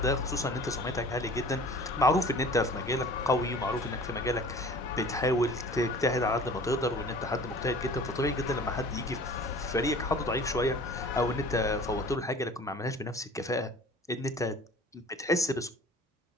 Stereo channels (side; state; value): both; normal; correlation 0.45